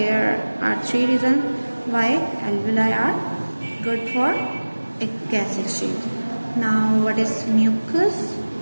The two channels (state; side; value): inverted; both; correlation -1.00